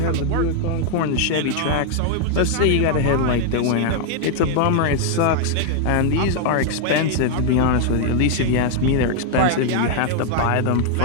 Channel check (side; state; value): both; different; correlation 0.00